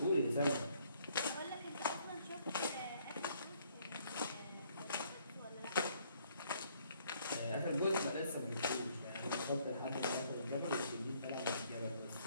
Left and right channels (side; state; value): both; inverted; correlation -0.66